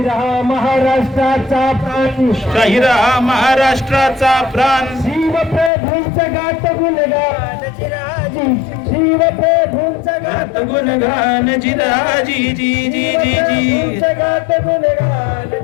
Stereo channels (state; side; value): drops out; right; at 5.7 s